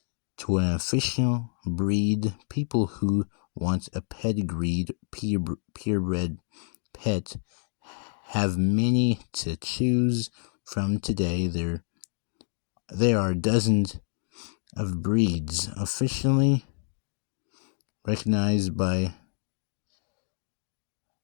to an official breed, people who want a pedigreed, purebred pet have many to choose from today. There are dozens of breeds officially recognized by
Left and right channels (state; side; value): silent; right; 59 dB below the other